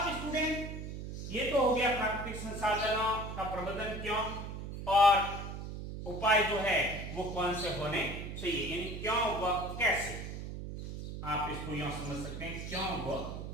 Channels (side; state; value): right; noise; hum, 7 dB below the sound